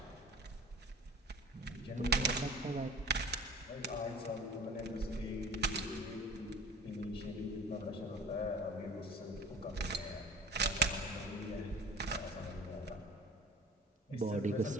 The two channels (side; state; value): both; normal; correlation 0.41